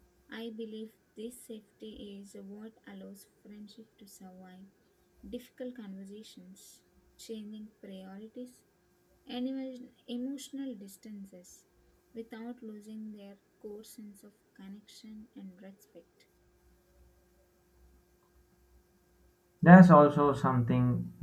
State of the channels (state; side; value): identical; both; correlation 1.00